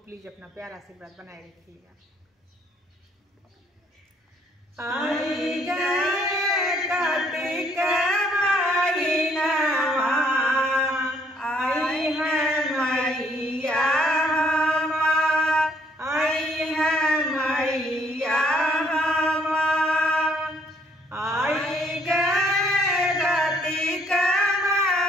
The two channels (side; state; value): both; normal; correlation 0.66